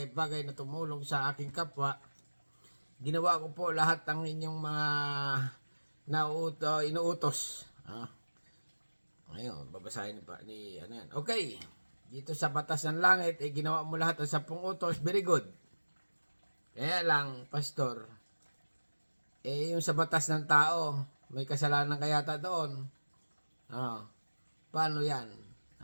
na tumulong sa aking kapwa. Ginawa ko po lahat ng inyong mga inuutos. Ngayon, babasahin ni yan. Okay, dito sa batas ng langit, ginawa mo lahat ng 10 utos, very good. Kaya lang, Pastor, yung sa batas ng tao, may kasalanan kayata doon. Paano yan?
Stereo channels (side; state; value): both; inverted; correlation -1.00